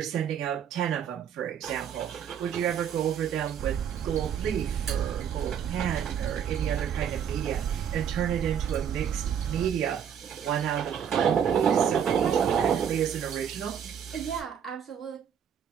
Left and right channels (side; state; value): left; quieter; 8.4 dB